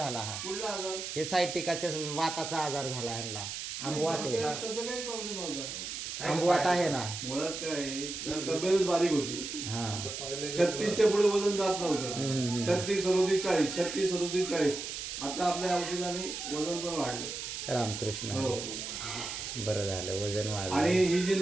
हा कुठला आजार? हे सायटिकाच्या वाताचा आजार झाला ह्यांना. आंबवात आहे. तसं काही प्रॉब्लेम नव्हता. आंबवात आहे ना. मुळात काय आहे, तब्येतच बारीक होती. हा 36च्या पुढे वजन जात नव्हतं. हम्म. 36, 37, 40, 36, 37, 40. आता आपल्या औषधाने वजन पण वाढले. रामकृष्ण हो. हरी. बरं झालं वजन आणि वाढलं. ही जी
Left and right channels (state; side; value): noise; right; hiss, 6 dB below the sound